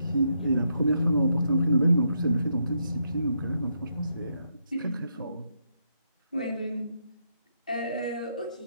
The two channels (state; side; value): inverted; both; correlation -0.79